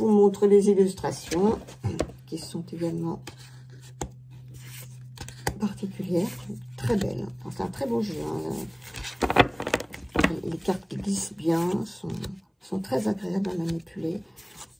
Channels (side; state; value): both; identical; correlation 1.00